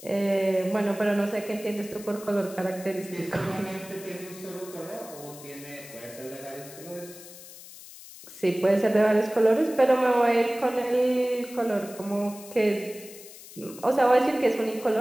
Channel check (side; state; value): left; noise; hiss, 17 dB below the sound